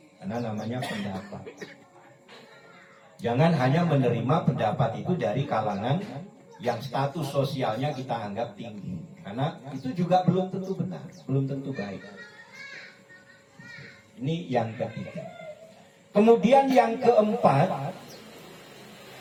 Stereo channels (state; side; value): identical; both; correlation 1.00